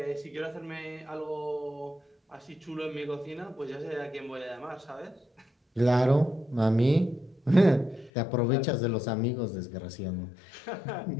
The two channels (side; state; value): right; drops out; at 8.1 s